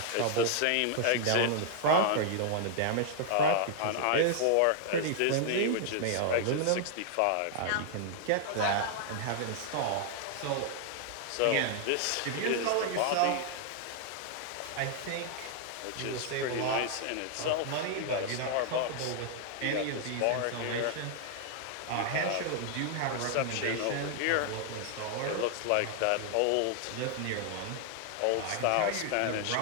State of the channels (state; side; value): different; both; correlation -0.01